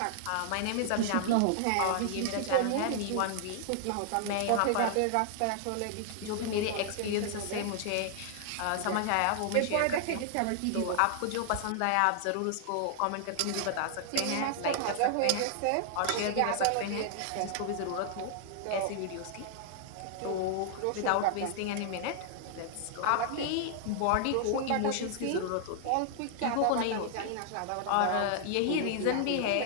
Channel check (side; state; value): both; different; correlation -0.01